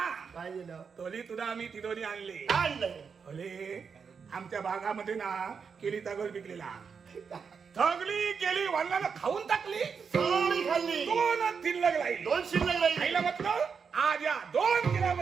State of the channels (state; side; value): quieter; left; 6.0 dB